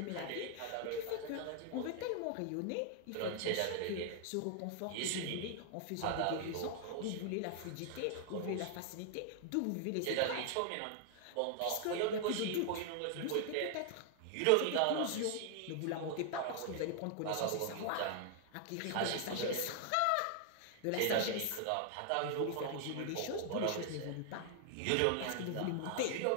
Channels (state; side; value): different; both; correlation 0.00